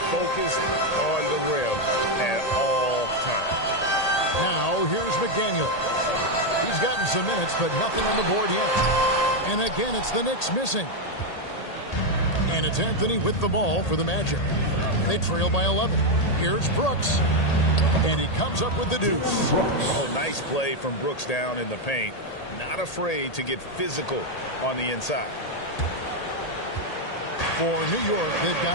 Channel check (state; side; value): late; right; 1.8 ms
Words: focused on the rim at all times. Now, here's McDaniels. He's gotten some minutes, but nothing on the board yet. And again, it's the Knicks missing. And it's Anthony with the ball for the Magic. They trail by 11. Here's Brooks. And he comes up with the deuce. Oh, nice play from Brooks down in the paint. Not afraid to get physical on the inside. For New York, they've